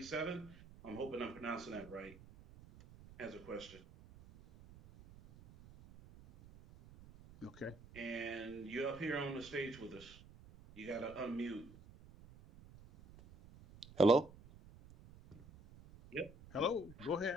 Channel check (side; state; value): right; noise; rumble, 19 dB below the sound